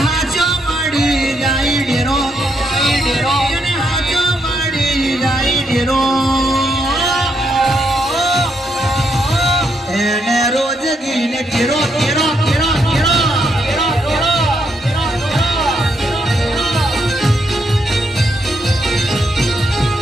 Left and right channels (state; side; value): normal; both; correlation 0.77